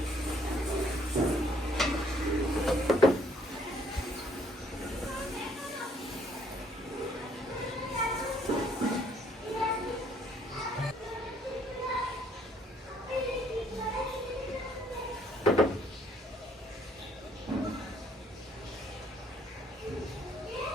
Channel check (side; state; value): both; normal; correlation 0.64